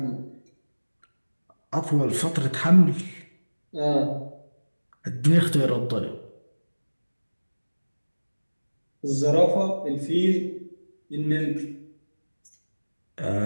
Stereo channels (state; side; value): inverted; both; correlation -1.00